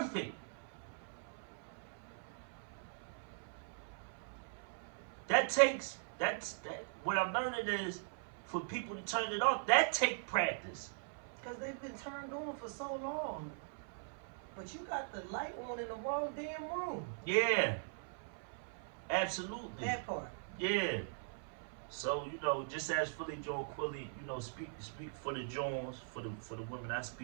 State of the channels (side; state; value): left; silent; 51 dB below the other